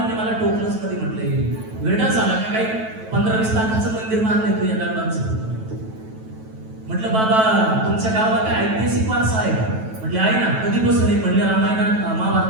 मला टोकलंच कधी म्हटलंय, वेडा झाला का काही 15-20 लाखाचं मंदिर बांधलंय तू या दगडांचं. म्हटलं बाबा तुमच्या गावाला काय ऐतिहासिक वारसा आहे का? म्हटले आहे ना. कधीपासून आहे? म्हणले रामायणात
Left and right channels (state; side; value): late; left; 9.2 ms